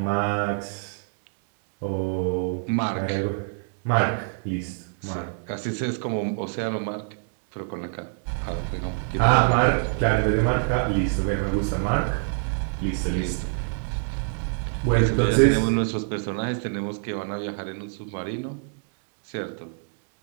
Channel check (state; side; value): silent; left; digital silence